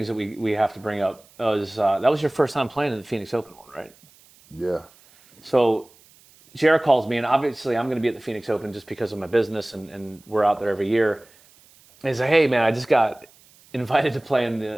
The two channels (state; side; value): noise; right; hiss, 28 dB below the sound